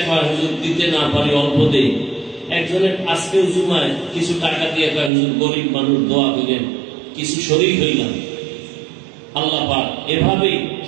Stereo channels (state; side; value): drops out; left; at 5.1 s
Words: হয়, হুজুর দিতে না পারি, অল্প দেই। একজনের আজকে জুমায় কিছু টাকা দিয়ে কয়, হুজুর গরিব মানুষ, দোয়া করেন, কিছু শরীর হইলাম। আল্লাহ পাক এভাবেই